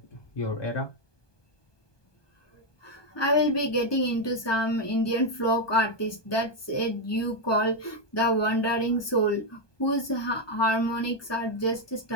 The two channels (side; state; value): right; late; 1.2 ms